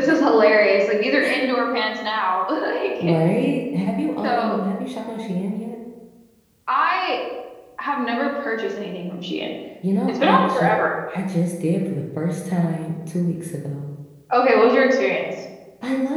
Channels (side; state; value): both; identical; correlation 1.00